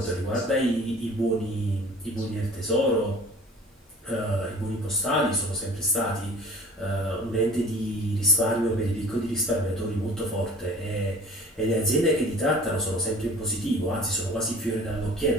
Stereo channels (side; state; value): both; normal; correlation 0.46